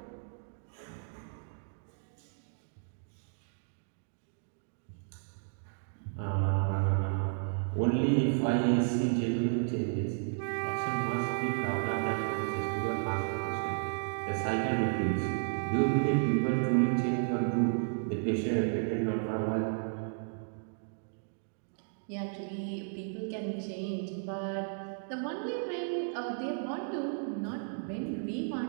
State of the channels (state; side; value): silent; left; digital silence